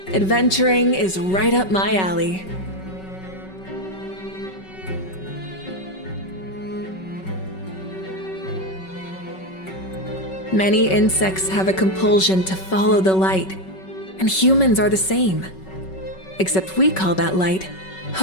Adventuring is right up my alley. Many insects have a compulsion to follow the light, and humans are the same. Except we call that light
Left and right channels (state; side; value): late; right; 5.3 ms